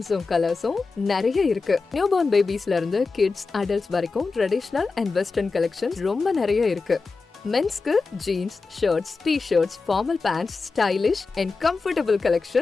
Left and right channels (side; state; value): right; quieter; 4.3 dB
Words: கலர்ஸும் நிறைய இருக்கு. நியூ பார்ன் பேபிஸ்ல இருந்து கிட்ஸ், அடல்ட்ஸ் வரைக்கும் ட்ரெடிஷனல் அண்ட் வெஸ்டர்ன் கலெக்ஷன்ஸ் ரொம்ப நிறைய இருக்கு. மென்ஸ்க்கு jeans, shirts, t-shirts, formal pants, stylish and comfortable